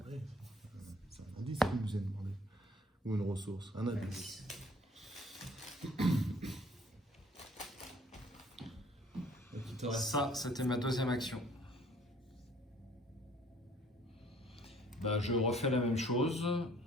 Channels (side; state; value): both; normal; correlation 0.57